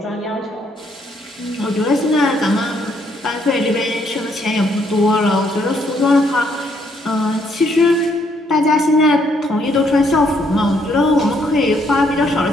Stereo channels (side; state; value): both; normal; correlation 0.70